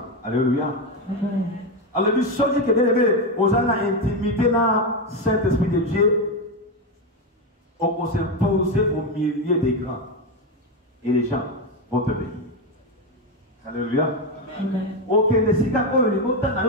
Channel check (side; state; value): both; normal; correlation 0.11